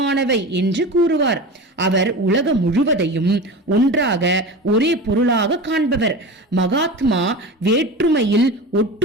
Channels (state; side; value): normal; both; correlation 0.30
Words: என்று கூறுவார். அவர் உலகம் முழுவதையும் ஒன்றாக ஒரே பொருளாக காண்பவர். மகாத்மா வேற்றுமையில்